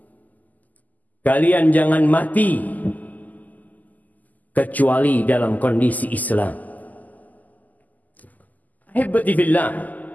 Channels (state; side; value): late; right; 0.081 ms